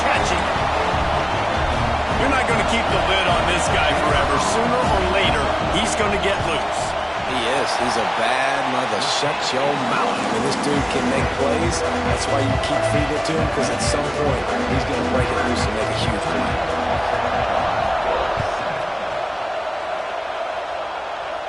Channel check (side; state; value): both; identical; correlation 1.00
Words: keep the lid on this guy forever. Sooner or later, he's going to get loose. He is. He's a bad mother. Shut your mouth. I mean, this dude can make plays. That's why you keep feeding it to him, because at some point, he's going to break it loose and make a huge play.